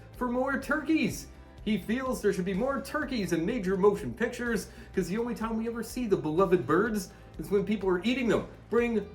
for more turkeys. He feels there should be more turkeys in major motion pictures, because the only time we ever see the beloved birds is when people are eating them. Bring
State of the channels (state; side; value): identical; both; correlation 1.00